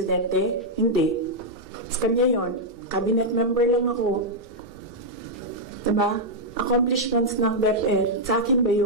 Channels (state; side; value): normal; both; correlation -0.04